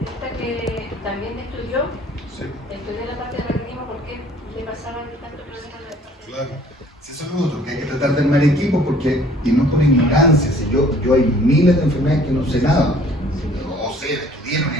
que también estudió la parte de raquitismo porque le pasaban tantos problemas de la parte de Claro. Sí, eso es lo otro, que hay que tratar de armar equipos porque, y no por ignorancia, si yo hay miles de enfermedades que no sé nada, o sé, estudié en la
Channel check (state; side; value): normal; both; correlation 0.54